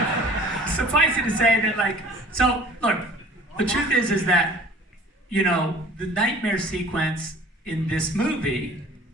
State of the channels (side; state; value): both; normal; correlation 0.48